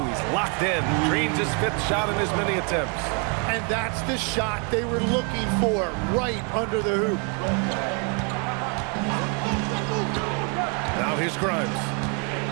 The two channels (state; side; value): quieter; left; 36.6 dB